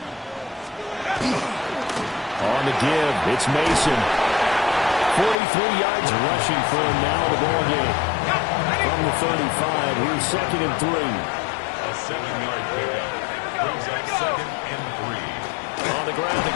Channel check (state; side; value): drops out; right; at 5.4 s